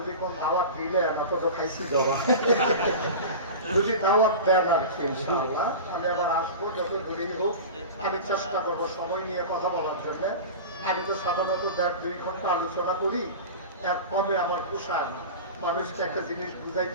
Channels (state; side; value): inverted; both; correlation -0.30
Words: কোন দাওয়াত দিলে আমরা তো খাইছি জবা, যদি দাওয়াত দেন আর কি ইনশাআল্লাহ আমি আবার আসবো, যত দূরেই হোক। আমি চেষ্টা করবো সময় নিয়ে কথা বলার জন্য। আমি তো সাধারণত 1.5-2 ঘন্টা আলোচনা করি, এর কমে আমার পোষায় না। মানুষকে একটা জিনিস